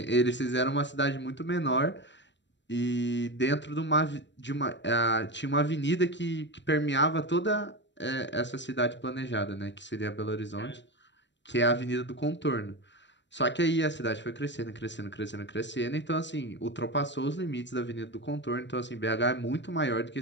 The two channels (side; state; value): right; late; 0.53 ms